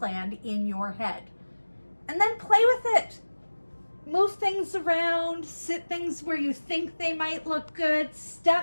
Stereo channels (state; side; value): inverted; both; correlation -1.00